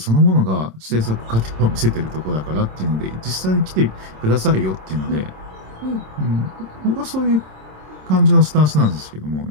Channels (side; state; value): left; late; 27 ms